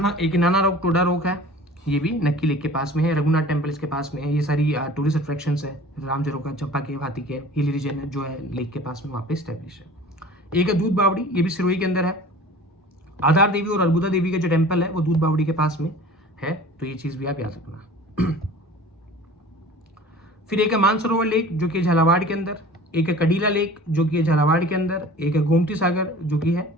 एक नाना रोक टोडा रोक है, ये भी नक्की लेक के पास में है। रघुनाथ टेम्पल इसके पास में है। ये सारी टूरिस्ट अट्रैक्शंस है। राम झरोका, चंपा केव, हाथी केव, हिली रीजन है जो है लेक के पास में, वहाँ पे स्टैब्लिश है। एक है दूध बावड़ी, ये भी सिरोही के अंदर है। आधार देवी और अर्बुदा देवी का जो टेम्पल है वो दूध बावड़ी के पास में है, तो ये चीज भी आप याद रखना। फिर एक है मानसरोवर लेक जो कि झालावाड़ के अंदर, एक है कडीला लेक जो कि है झालावाड़ के अंदर, एक है गोमती सागर जो कि है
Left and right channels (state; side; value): normal; both; correlation 0.43